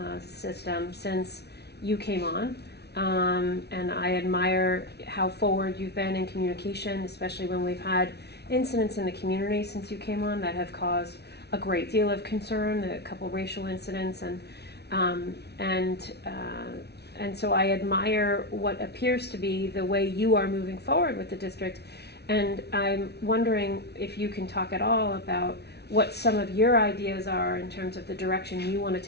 system since you came on. And I admire how forward you've been in communication, especially when we've had incidents in the community since you came on that have caused a great deal of concern, a couple racial incidents, and so I admire what appears to be the way you are moving forward with the district. And I'm wondering if you can talk at all about what some of your ideas are in terms of the direction you want to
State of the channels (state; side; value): late; right; 0.49 ms